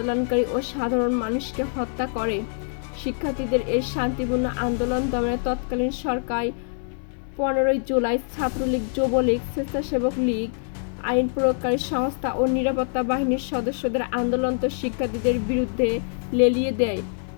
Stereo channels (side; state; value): right; silent; digital silence